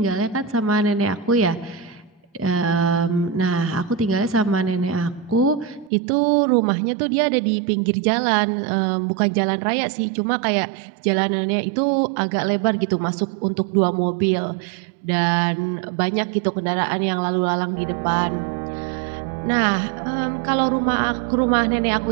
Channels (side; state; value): left; drops out; at 5.9 s